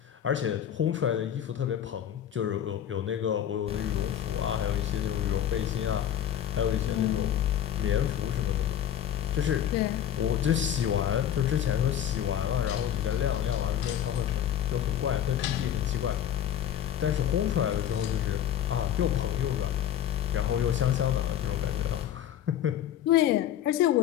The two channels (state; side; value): quieter; right; 10.4 dB